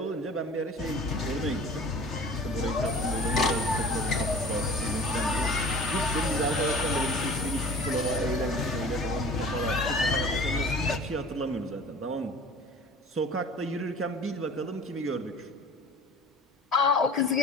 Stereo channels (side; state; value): both; normal; correlation 0.44